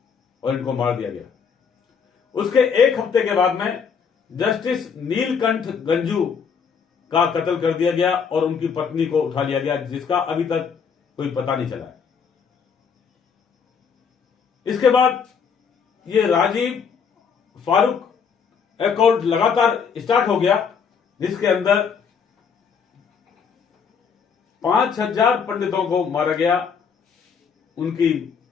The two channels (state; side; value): quieter; right; 6.4 dB